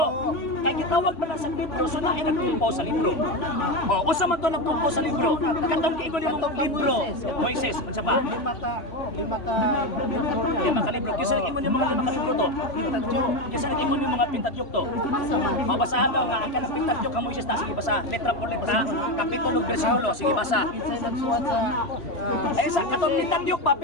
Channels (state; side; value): late; right; 3.0 ms